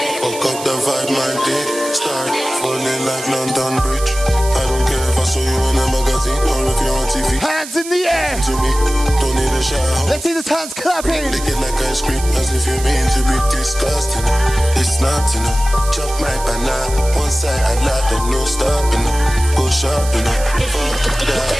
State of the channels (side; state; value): right; noise; hiss, 11 dB below the sound